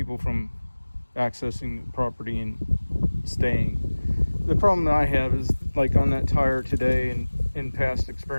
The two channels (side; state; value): both; inverted; correlation -1.00